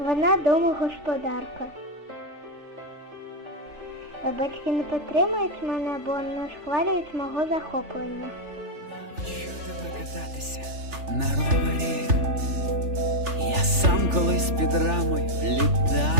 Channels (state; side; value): late; left; 3.4 ms